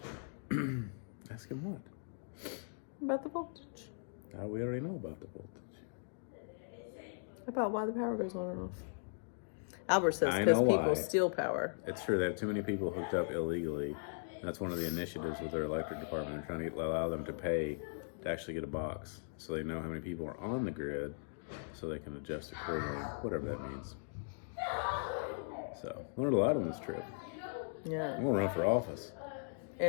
doing. Ask him what? about the voltage. We already know about the voltage. About why the power goes on and off. Albert says I because know people why. steal power. It's true. They have too many people hooked up illegally. That's one of the initiatives with their electric department. They're trying to allow them to pay to actually get a box, so they know how many people are on the grid, so they can adjust accordingly, whatever that means. So, learned a lot on this trip. Yeah. I'm gonna run for office.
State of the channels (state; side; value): silent; right; digital silence